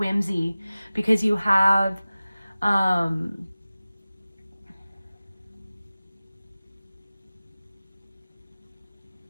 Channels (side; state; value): both; inverted; correlation -0.97